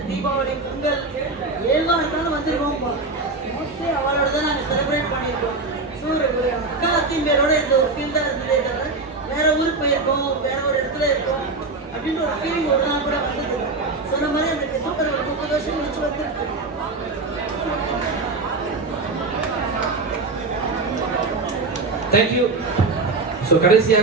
தீபாவளி, பொங்கல், ஏழ்வாக இருந்தாலும் வந்துருக்கோம். மோஸ்ட்லி அவளோட தான் நாங்கள் செலிப்ரேட் பண்ணியிருக்கோம். ஸோ ஒரு அக்கா அத்திம்பேரோட இந்த ஒரு ஃபீல் தான் இருந்ததே தவிர வேற ஊருக்கு போயிருக்கோம், வேற ஒரு இடத்துல இருக்கோம் அப்படின்ற ஒரு ஃபீலிங் ஒரு நாள் கூட வந்தது. சொன்ன மாதிரி அந்த டிசம்பர் ஒரு 30 வருஷம் கழிச்சு வந்துருக்கு. தேங்க்யூ. ஸோ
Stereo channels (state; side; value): quieter; left; 3.6 dB